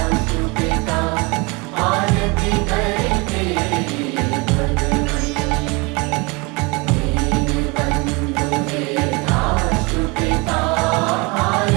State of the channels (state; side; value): quieter; left; 27.6 dB